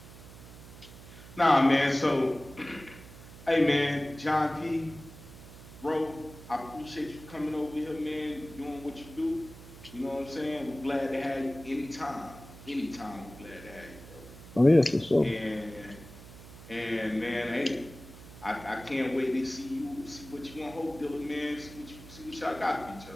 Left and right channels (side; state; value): right; noise; hum, 17 dB below the sound